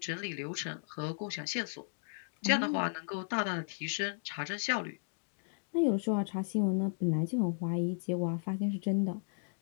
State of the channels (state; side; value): silent; right; digital silence